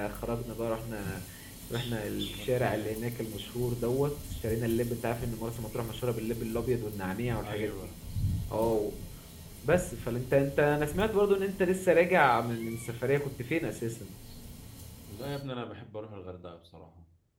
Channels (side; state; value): both; identical; correlation 1.00